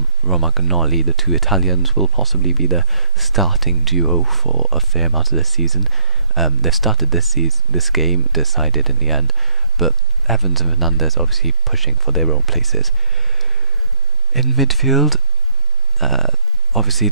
Romagnoli, the 2 Italians, will possibly be the starting duo for a fair amount of this season. They've started this game, decided in the end, but Evans and Fernandez obviously pushing for their own places. In midfield, obviously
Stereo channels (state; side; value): normal; both; correlation 0.05